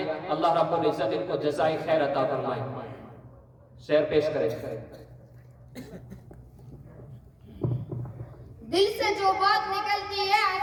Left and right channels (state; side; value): identical; both; correlation 1.00